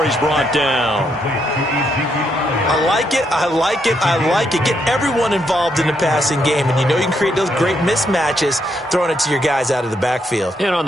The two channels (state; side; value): normal; both; correlation 0.77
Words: he's brought down. I like it, I like it, I like it. Get everyone involved in the passing game, and you know you can create those great mismatches throwing it to your guys out of the backfield. And on